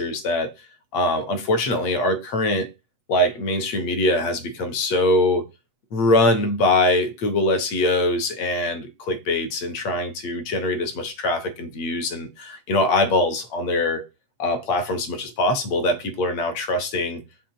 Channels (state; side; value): late; right; 8.0 ms